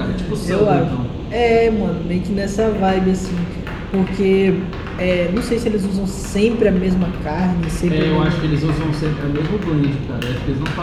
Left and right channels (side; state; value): both; identical; correlation 1.00